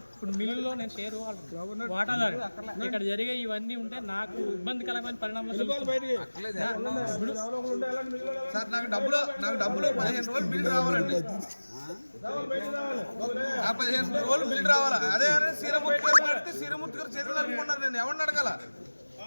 ఇప్పుడు మిల్లులో నేను షేర్ వాటాదారు ఇక్కడ జరిగే ఇవన్నీ ఉంటే నాకు ఇబ్బందికరమైన పరిణామాలు సార్ నాకు డబ్బులు 15 రోజులు బిల్ రావాలండి. 15 రోజులు బిల్ రావాలా? అదే శ్రీరమూర్తి గారు చేతులు అనుకున్నారు. నేను ఎవరిని అడగాల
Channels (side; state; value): both; inverted; correlation -1.00